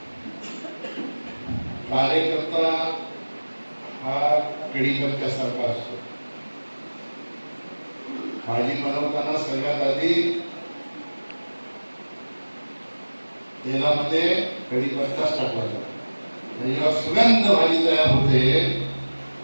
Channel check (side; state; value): both; inverted; correlation -1.00